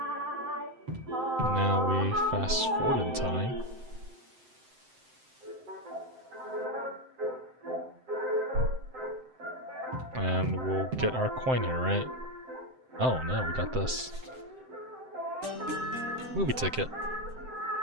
Now we fast forward in time. And we'll get our coin here, right? Oh no, we got this. Movie ticket.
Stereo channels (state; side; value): late; left; 7.7 ms